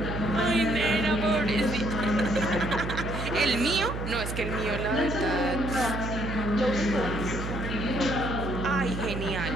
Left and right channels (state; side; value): noise; right; hum, 5 dB below the sound